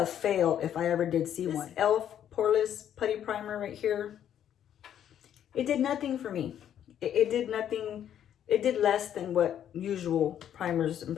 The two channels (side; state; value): right; quieter; 10.0 dB